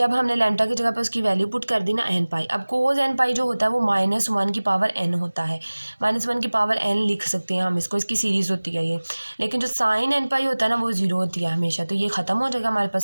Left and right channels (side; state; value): both; inverted; correlation -1.00